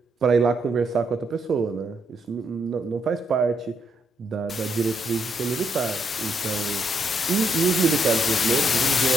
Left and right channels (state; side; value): normal; both; correlation 0.77